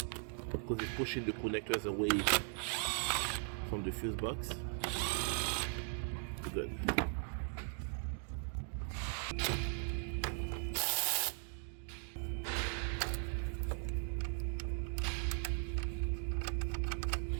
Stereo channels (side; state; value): left; silent; 52 dB below the other